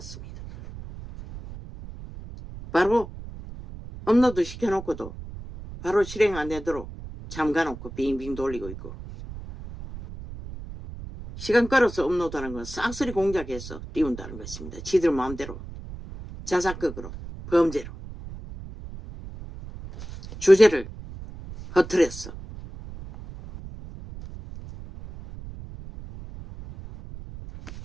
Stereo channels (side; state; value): right; noise; rumble, 13 dB below the sound